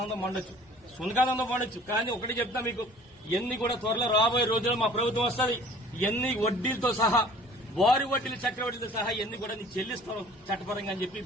పండొచ్చు, సునకానందం పండొచ్చు. కానీ ఒకటి చెప్తా మీకు, ఇవన్నీ కూడా త్వరలో రాబోయే రోజుల్లో మా ప్రభుత్వం వస్తుంది, ఇవన్నీ వడ్డీలతో సహా, వారి వడ్డీలు చక్రవడ్డీలతో సహా ఇవన్నీ కూడా నీకు చెల్లిస్తాం చట్టపరంగా అని చెప్పి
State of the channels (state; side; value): normal; both; correlation 0.49